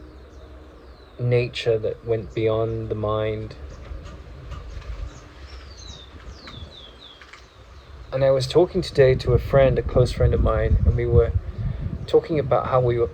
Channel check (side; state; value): both; identical; correlation 1.00